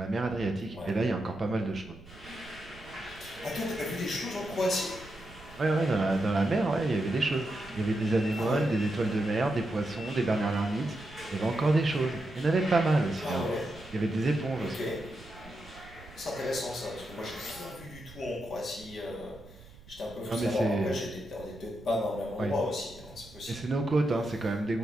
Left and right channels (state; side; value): noise; right; rumble, 20 dB below the sound